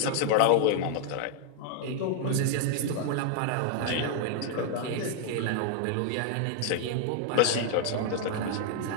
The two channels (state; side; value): different; both; correlation 0.00